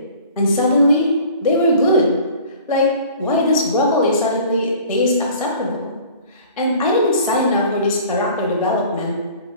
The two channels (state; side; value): inverted; both; correlation -0.47